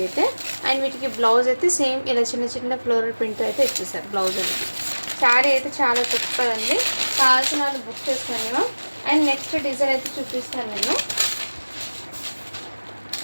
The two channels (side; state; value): both; inverted; correlation -1.00